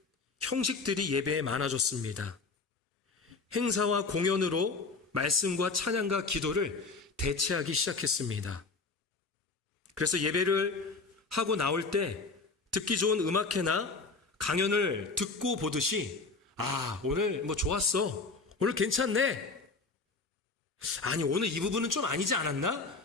형식들이 예배에 많아졌습니다. 행사와 공연으로 말씀과 찬양과 기도를 대체하기 시작했습니다. 그래서 예배를 하고 나올 때 듣기 좋은 음악회나 강연을 듣고 보듯이 오늘 좋았어. 오늘 괜찮네. 아니, 오늘 이 부분은 좀 아니지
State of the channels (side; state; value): right; quieter; 4.0 dB